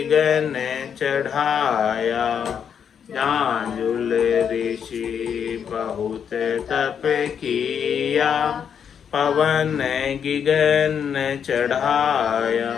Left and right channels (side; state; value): right; quieter; 7.7 dB